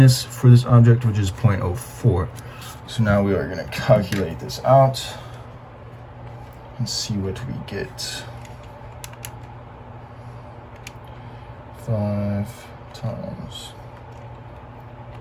for this object, which is 0.04. So now we are going to calculate this out and see what we get. 5 times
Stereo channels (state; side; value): identical; both; correlation 1.00